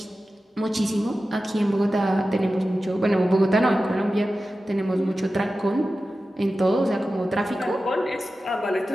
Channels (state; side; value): normal; both; correlation 0.94